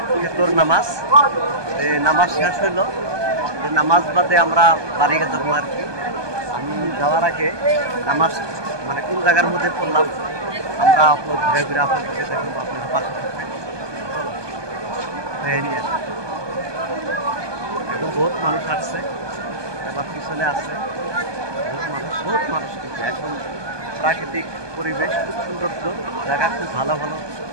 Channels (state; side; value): late; left; 1.2 ms